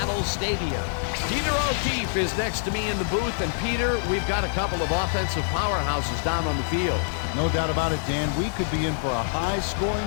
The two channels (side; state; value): right; silent; digital silence